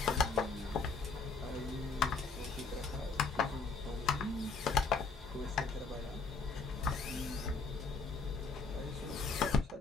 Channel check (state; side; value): quieter; right; 4.3 dB